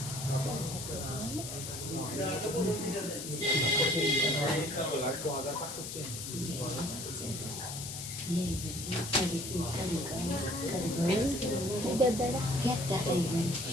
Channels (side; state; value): left; noise; hiss, 7 dB below the sound